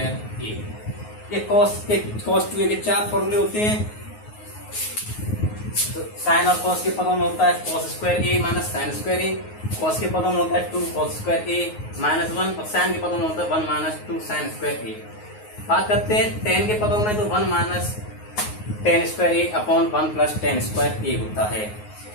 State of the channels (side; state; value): right; late; 9.5 ms